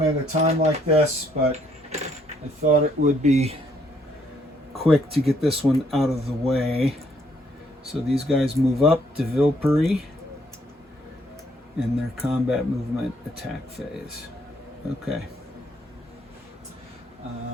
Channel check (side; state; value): both; normal; correlation 0.69